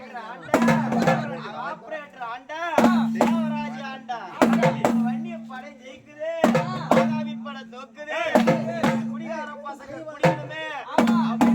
ஆபரேட்டர் ஆண்டா தேவராஜ் ஆண்டா வன்னிய படை ஜெயிக்குது பாதாபி படை தோக்குது குடிகார பசங்க குடிக்கணுமே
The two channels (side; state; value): both; identical; correlation 1.00